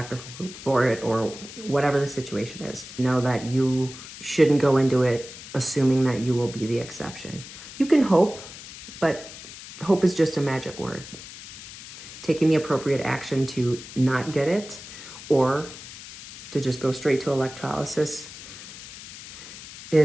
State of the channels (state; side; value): noise; left; hiss, 14 dB below the sound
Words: for it, or whatever the situation is. Know that you shouldn't go into it assuming that you will be the exception. You can hope, but hope is just a magic word. Taking the appropriate action to not get it or to just go straight to electrolysis